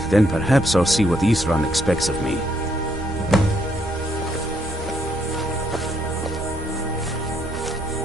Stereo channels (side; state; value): both; normal; correlation 0.72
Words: then perhaps I'll see what Isran expects of me.